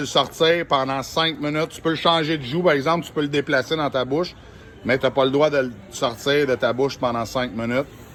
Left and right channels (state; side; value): identical; both; correlation 1.00